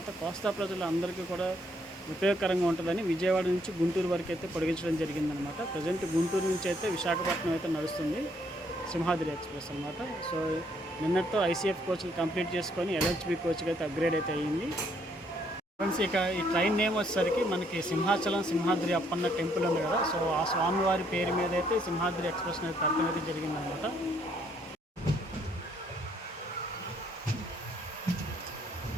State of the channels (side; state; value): both; normal; correlation 0.69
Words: కోస్తా ప్రజలు అందరికీ కూడా ఉపయోగకరంగా ఉంటుందని విజయవాడ నుంచి గుంటూరు వరకు అయితే పొడిగించడం జరిగిందనమాట. ప్రజెంట్ గుంటూరు నుంచి అయితే విశాఖపట్నం అయితే నడుస్తుంది సింహాద్రి ఎక్స్ప్రెస్ అనమాట. సో నిన్నటితో ఐసీఎఫ్ కోచ్లు కంప్లీట్ చేసుకొని ఎల్హెచ్బి కోచ్కి అయితే అప్గ్రేడ్ అయితే అయ్యింది. ఫ్రెండ్స్ ఇక ఈ ట్రైన్ నేమ్ వచ్చేసరికి మనకి సింహాచలం సింహాద్రి అప్పన్న టెంపుల్ ఉంది కదా. సో ఆ స్వామివారి పేరు మీద అయితే సింహాద్రి ఎక్స్ప్రెస్ అనేది పెట్టడం అయితే జరిగిందనమాట.